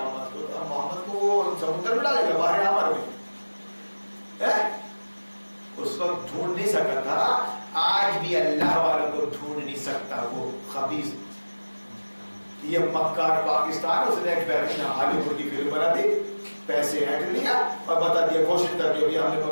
کو، اب محمد کو وہ سمندر میں ڈالے گا، باہر عمر میں اس وقت ڈھونڈ نہیں سکتا تھا، آج بھی اللہ والوں کو ڈھونڈ نہیں سکتا وہ خبیث۔ یہ مکار پاکستان، اس نے ایک بہترین ہالی ووڈ کی فلم بنا دی، پیسے ہینڈ لیا اور بتا دیا، کوشش کر کے بھی ہم نے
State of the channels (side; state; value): both; inverted; correlation -1.00